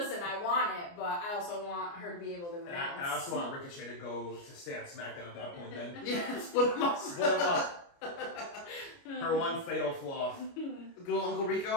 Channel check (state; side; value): late; right; 29 ms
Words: I want it, but I also want her to be able to And announce. I also want Ricochet to go to stay on SmackDown at that point then. Yeah, split them up. Split them up. Her one fatal flaw. Good old Uncle